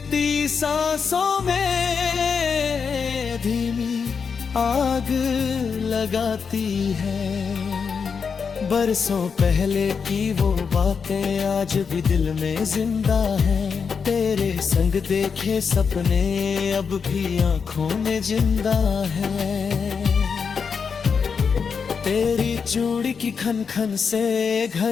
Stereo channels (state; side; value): quieter; right; 5.9 dB